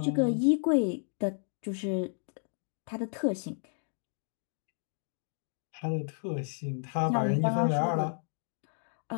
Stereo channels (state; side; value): silent; right; digital silence